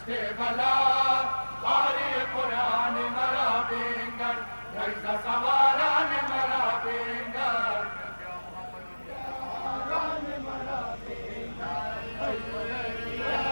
बला बारी कुरान मरा बिंगर नैज़ सवारान मरा बिंगर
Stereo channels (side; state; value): both; inverted; correlation -1.00